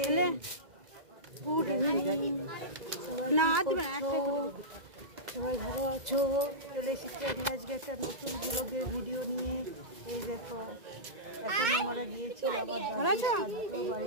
good evening. সবাই সবাই ভালো আছো? চলে এসেছি আমি আজকে একটা নতুন ব্লগের ভিডিও নিয়ে। এই দেখো, এখন আমরা গিয়েছি আমার দাদুর শ্রাদ্ধ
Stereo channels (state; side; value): late; left; 2.0 ms